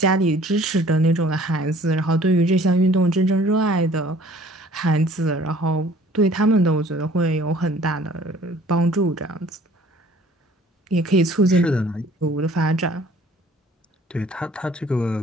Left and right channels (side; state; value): both; normal; correlation 0.54